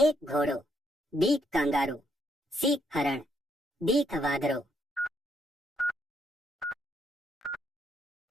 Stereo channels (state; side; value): normal; both; correlation 0.74